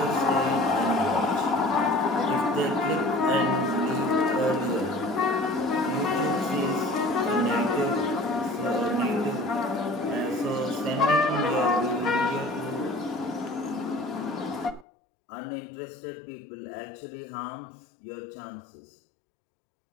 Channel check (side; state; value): right; drops out; at 14.9 s